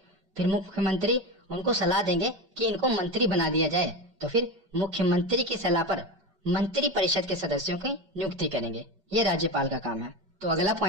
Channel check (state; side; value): late; left; 5.1 ms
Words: फिर मुख्यमंत्री उनको सलाह देंगे कि इनको मंत्री बना दिया जाए, तो फिर मुख्यमंत्री की सलाह पर मंत्री परिषद के सदस्यों की नियुक्ति करेंगे। ये राज्यपाल का काम है। तो अगला